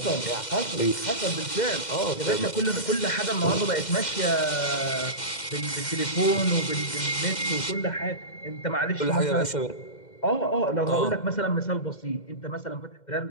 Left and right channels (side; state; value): right; late; 2.1 ms